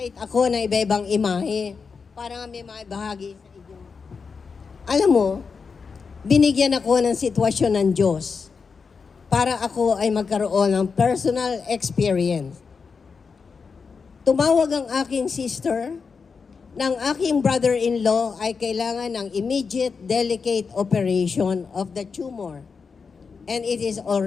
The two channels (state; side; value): quieter; right; 5.3 dB